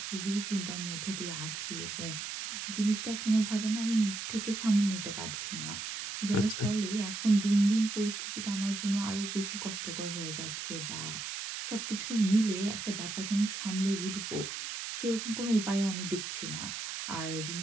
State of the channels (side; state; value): right; noise; hiss, 5 dB below the sound